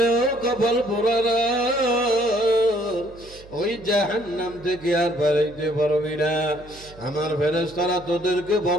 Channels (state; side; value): noise; right; hum, 21 dB below the sound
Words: ও কপাল পোড়ারা, ওই জাহান্নাম থেকে আর বেরাইতে পারবি না। আমার ফেরেশতারা তোদেরকে